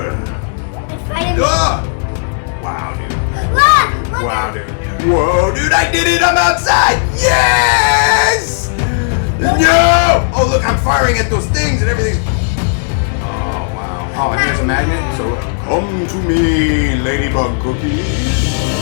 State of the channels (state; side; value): silent; right; digital silence